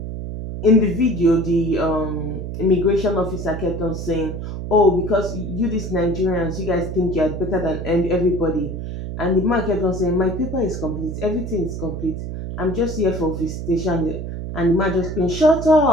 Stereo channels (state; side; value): noise; right; hum, 6 dB below the sound